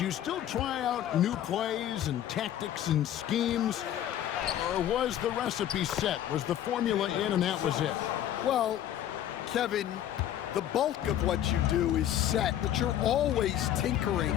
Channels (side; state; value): right; quieter; 11.3 dB